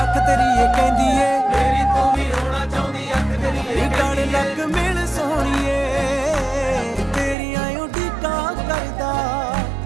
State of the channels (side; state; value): left; drops out; at 7.4 s